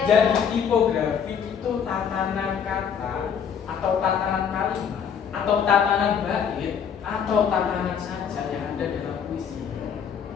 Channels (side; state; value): right; quieter; 7.5 dB